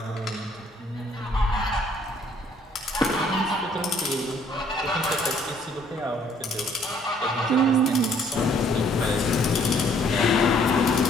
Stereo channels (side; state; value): both; normal; correlation 0.62